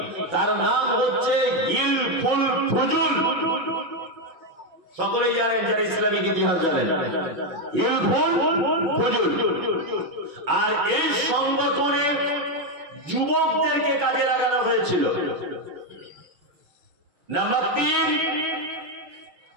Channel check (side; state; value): left; late; 6.1 ms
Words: তার নাম হচ্ছে হিলফুল ফুজুল। সকলেই জানেন, যারা ইসলামিক ইতিহাস জানেন, হিলফুল ফুজুল। আর এই সংগঠনে যুবকদেরকে কাজে লাগানো হয়েছিল। নাম্বার 3,